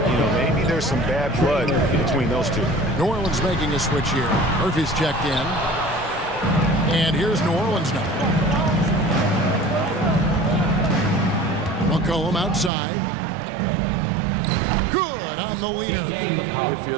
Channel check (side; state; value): left; drops out; at 12.7 s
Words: You know, maybe there's some bad blood between those two. New Orleans making a switch here. Murphy's checked in. And here's New Orleans now. McCollum outside. Good on the leader. If you